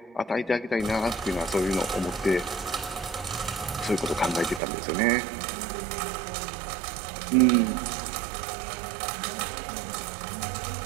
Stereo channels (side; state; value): left; drops out; at 4.6 s